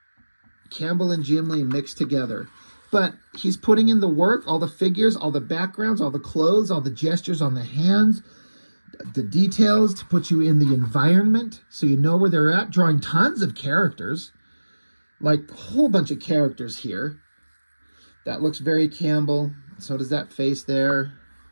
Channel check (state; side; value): inverted; both; correlation -1.00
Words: Cambell and Jim Lee mixed together. But he's putting in the work, all the figures, all the backgrounds, all the clothes, all the gestures on the hands, the details to put you in the environment so you know where they're at, drawing tons of characters. Like a whole bunch of characters here. That looks very Cambell. So does that face there.